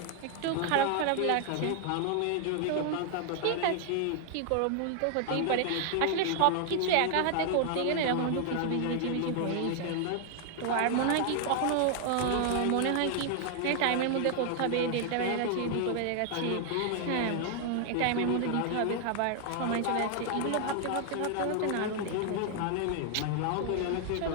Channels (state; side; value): different; both; correlation 0.00